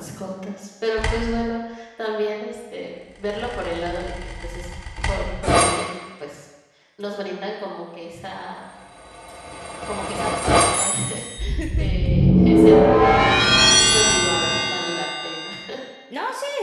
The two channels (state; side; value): identical; both; correlation 1.00